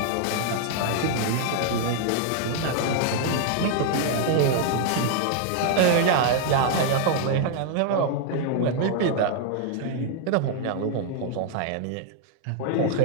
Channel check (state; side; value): different; both; correlation 0.00